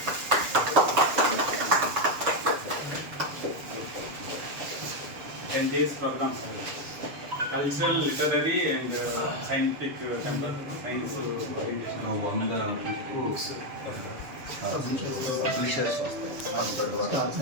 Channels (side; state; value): left; late; 7.2 ms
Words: NJS program, cultural, literary and scientific temple, science orientation.